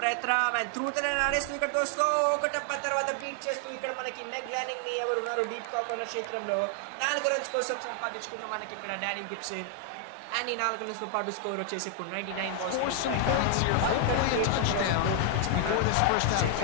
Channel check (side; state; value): both; different; correlation 0.00